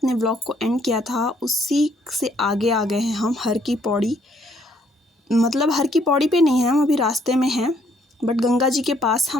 vlog को and किया था उसी से आगे आ गए हैं हम हर की पौड़ी। मतलब हर की पौड़ी पे नहीं है, हम अभी रास्ते में हैं, बट गंगा जी के पास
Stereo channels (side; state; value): both; normal; correlation 0.67